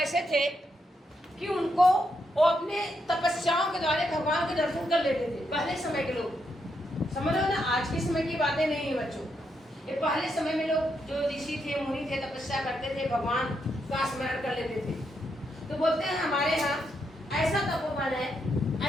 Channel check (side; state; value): both; normal; correlation 0.80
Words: थे कि उनको वो अपने तपस्याओं के द्वारा भगवान के दर्शन कर लेते थे। पहले समय के लोग, समझ लो ना, आज के समय की बातें नहीं है बच्चों। ये पहले समय में लोग जो ऋषि थे मुनि थे तपस्या करते थे, भगवान का स्मरण कर लेते थे। तो बोलते हैं हमारे यहाँ ऐसा तपोवन है,